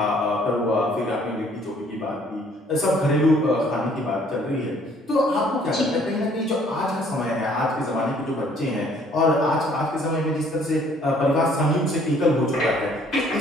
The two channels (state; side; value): normal; both; correlation 0.60